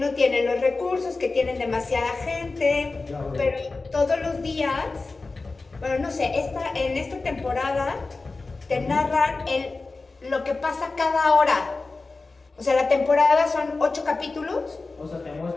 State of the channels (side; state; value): right; quieter; 3.7 dB